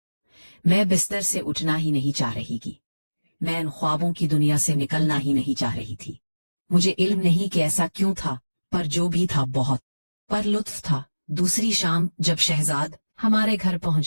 मैं बिस्तर से उठना ही नहीं चाह रही थी, मैं इन ख्वाबों की दुनिया से निकलना ही नहीं चाह रही थी। मुझे इल्म नहीं कि ऐसा क्यों था, पर जो भी था बहुत पर लुत्फ था। दूसरी शाम जब शहजाद हमारे घर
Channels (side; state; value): both; inverted; correlation -1.00